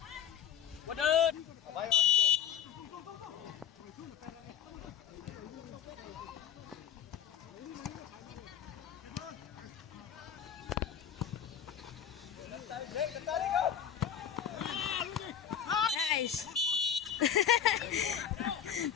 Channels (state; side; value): quieter; right; 8.7 dB